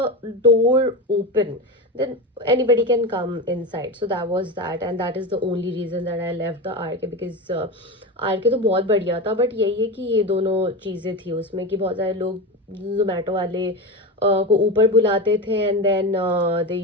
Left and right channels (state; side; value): normal; both; correlation 0.21